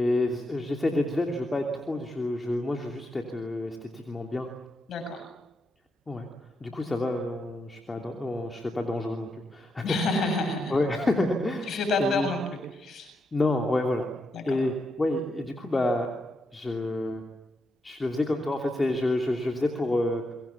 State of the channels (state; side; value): normal; both; correlation 0.82